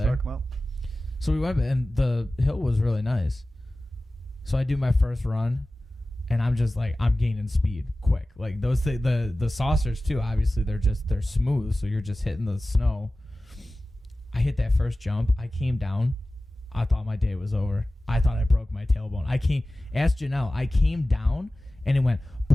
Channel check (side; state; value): both; normal; correlation 0.96